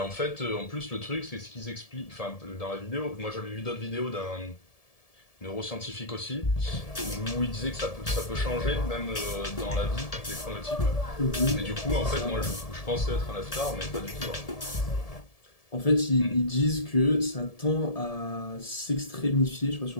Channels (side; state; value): right; late; 1.7 ms